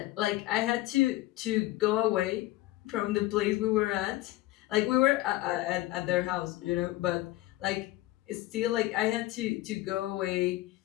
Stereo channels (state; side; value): quieter; right; 17.4 dB